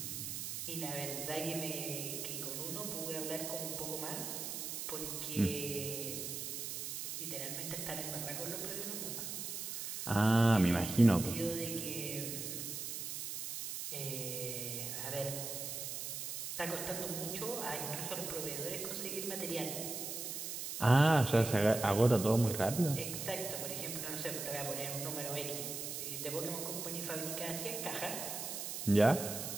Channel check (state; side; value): noise; right; hiss, 5 dB below the sound